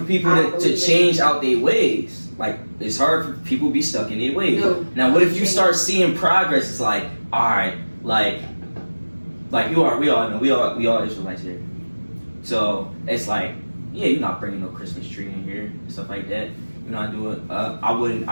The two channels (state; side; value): inverted; both; correlation -1.00